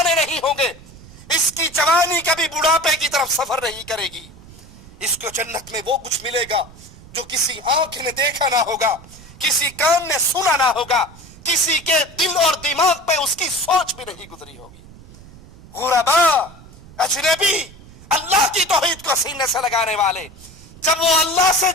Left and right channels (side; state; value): right; noise; rumble, 20 dB below the sound